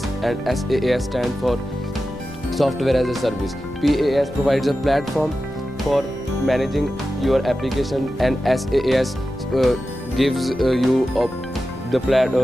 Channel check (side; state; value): left; noise; rumble, 17 dB below the sound